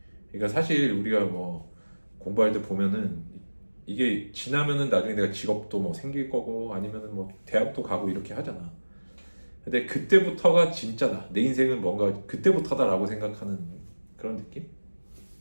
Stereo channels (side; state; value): both; inverted; correlation -1.00